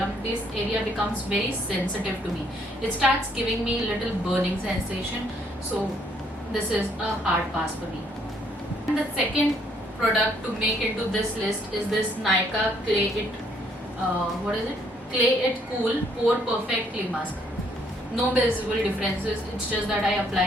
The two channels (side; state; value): both; normal; correlation 0.67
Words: this area becomes very sensitive to me. It starts giving me a little burning sensation. So this is a hard pass for me. And the second product to make into this list is this Nykaa Clay It Cool Pore Perfect Clay Mask. No visible differences. It's just that I apply